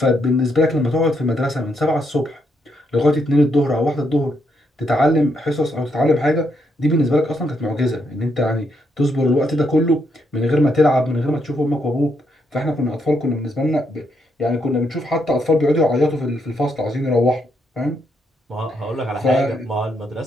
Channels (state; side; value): normal; both; correlation 0.77